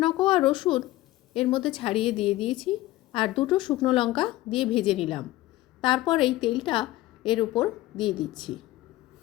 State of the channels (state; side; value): quieter; right; 16.9 dB